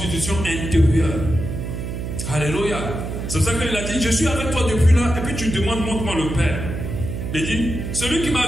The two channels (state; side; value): noise; right; hum, 5 dB below the sound